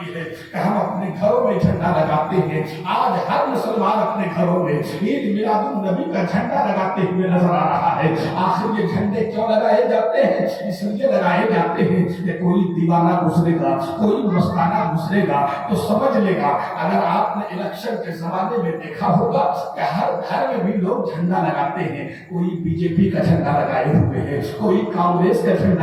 है कि हम अपने घरों में झंडा लगाते हैं। आज हर मुसलमान अपने घरों में ईद मिलादुन नबी का झंडा लगाते हुए नजर आ रहा है। आखिर ये झंडे क्यों लगाए जाते हैं? इसलिए लगाए जाते हैं कि कोई दीवाना गुजरेगा, कोई मस्ताना गुजरेगा तो समझ लेगा। अगर आपने इलेक्शन के जमाने में देखा होगा कि हर घर में भी लोग झंडा लगाते हैं। कोई बीजेपी का झंडा लगाए हुए है, कोई कांग्रेस का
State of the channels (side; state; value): both; identical; correlation 1.00